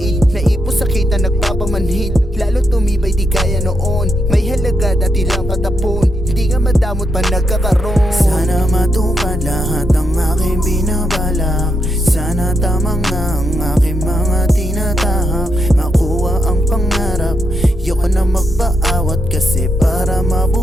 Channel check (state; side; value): normal; both; correlation 0.82